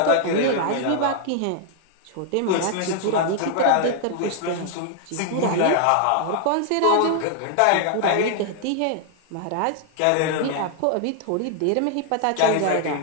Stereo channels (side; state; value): both; different; correlation 0.00